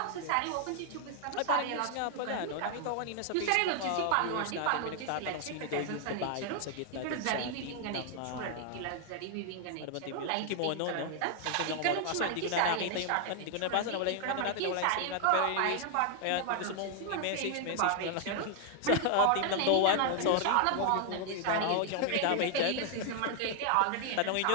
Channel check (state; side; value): different; both; correlation 0.00